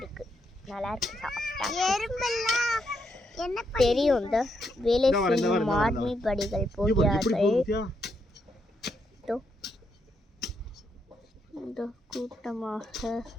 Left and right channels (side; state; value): both; normal; correlation 0.79